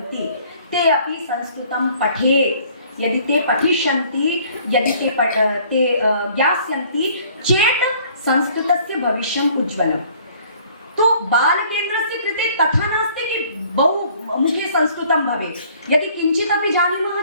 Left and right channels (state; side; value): inverted; both; correlation -0.57